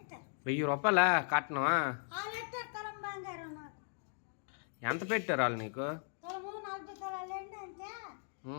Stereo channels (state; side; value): silent; right; 53 dB below the other